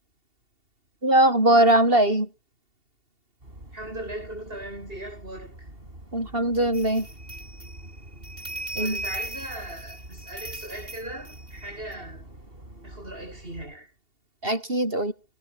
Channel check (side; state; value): left; late; 2.7 ms